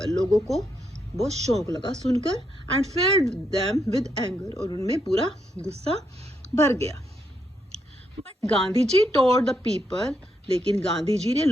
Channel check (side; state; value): both; normal; correlation 0.78